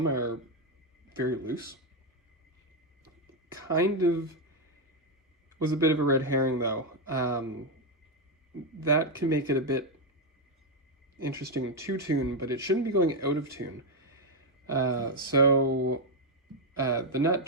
are very loose. Kind of was a bit of a red herring though. That can make it a bit interesting to tune, but it shouldn't be going out of tune. So the nut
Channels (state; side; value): normal; both; correlation 0.03